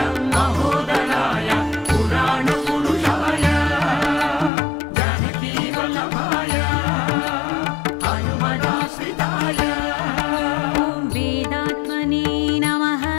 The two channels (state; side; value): drops out; right; at 4.5 s